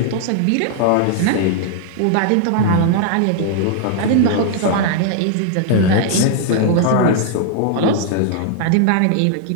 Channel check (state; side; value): different; both; correlation 0.00